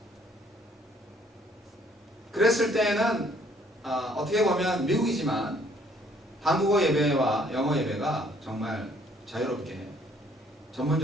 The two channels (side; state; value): both; normal; correlation 0.62